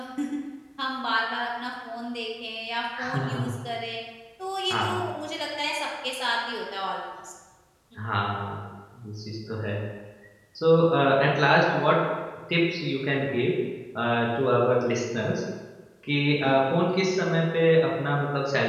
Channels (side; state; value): both; identical; correlation 1.00